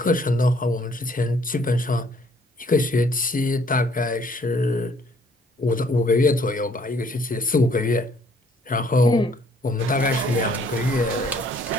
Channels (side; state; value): both; normal; correlation 0.62